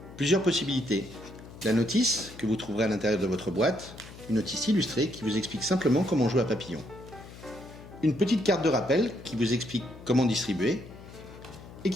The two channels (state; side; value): noise; left; hum, 17 dB below the sound